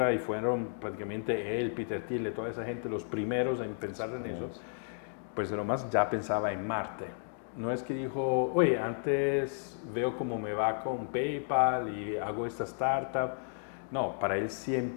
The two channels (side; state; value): right; silent; digital silence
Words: y fueron prácticamente él, Peter Thiel, toda esa gente los primeros en pensar en eso, pues Elon Musk ya pensaba en Marte. No es que dijo, oye, antes veo cómo me va con PayPal y hago esta startup. No, para él